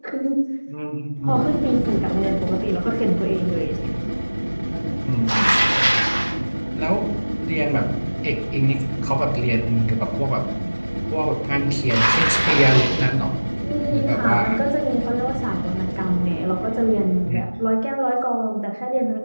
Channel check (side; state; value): both; inverted; correlation -1.00